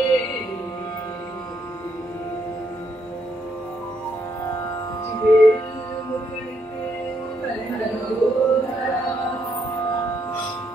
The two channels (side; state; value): both; normal; correlation 0.75